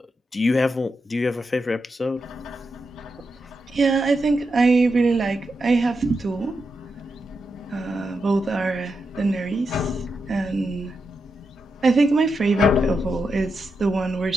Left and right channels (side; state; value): both; normal; correlation 0.86